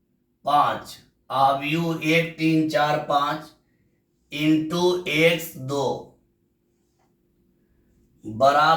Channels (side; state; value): both; identical; correlation 1.00